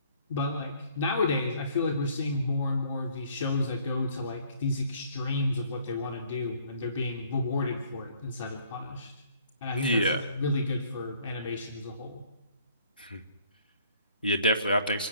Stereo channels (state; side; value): inverted; both; correlation -0.60